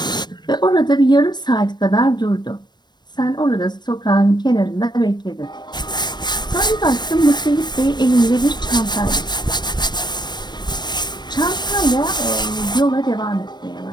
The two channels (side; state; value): right; late; 0.21 ms